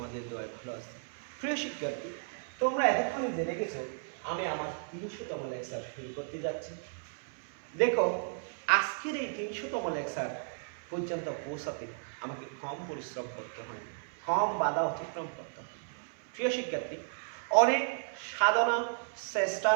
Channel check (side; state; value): left; silent; 55 dB below the other